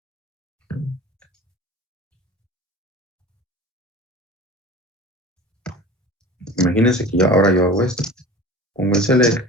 ahora yo hago esto, pongo el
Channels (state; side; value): normal; both; correlation 0.39